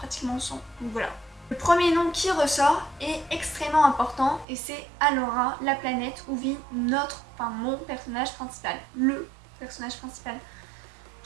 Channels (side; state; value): left; drops out; at 4.5 s